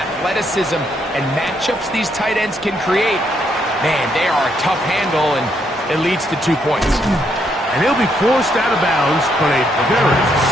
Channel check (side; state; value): both; normal; correlation 0.75